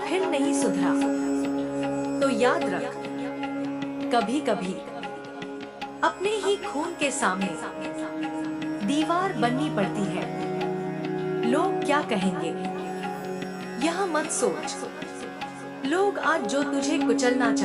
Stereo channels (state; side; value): identical; both; correlation 1.00